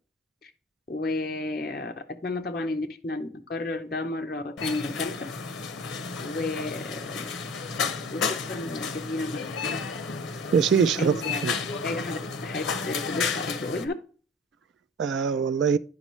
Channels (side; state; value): both; normal; correlation 0.41